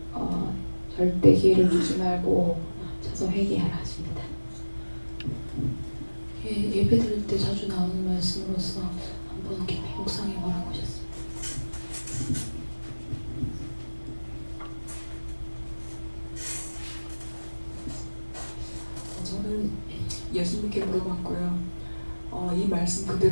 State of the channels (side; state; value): both; inverted; correlation -1.00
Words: 절대 기회를 주지 말고 쳐서 회개하라 하십니다. 예배 드릴 때 자주 나오는 말씀으로서 한번 깊이 묵상해 보라고 하셨습니다. 저는 예수님께 물어봤고요. 이 말씀